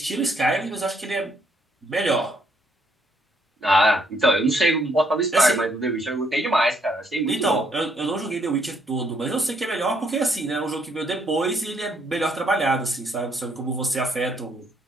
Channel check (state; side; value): normal; both; correlation 0.70